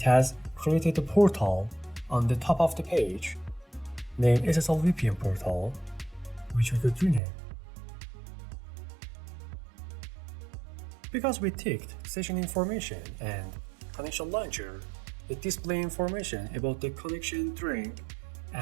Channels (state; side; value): drops out; left; at 7.2 s